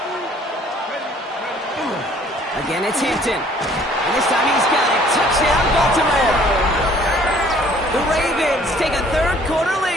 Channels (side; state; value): both; normal; correlation 0.57